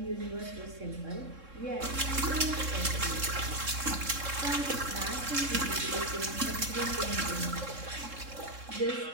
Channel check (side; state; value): left; late; 3.7 ms